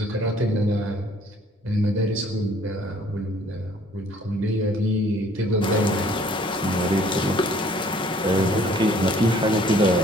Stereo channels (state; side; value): normal; both; correlation 0.58